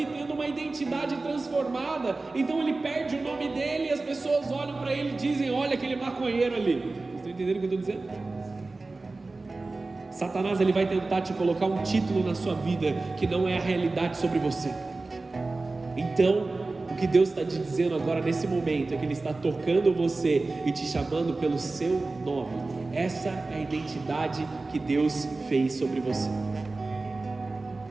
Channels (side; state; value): left; quieter; 3.4 dB